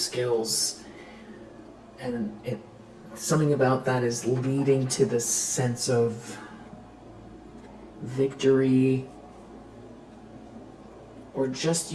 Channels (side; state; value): both; identical; correlation 1.00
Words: And something about that is leading to this sense of victory, or just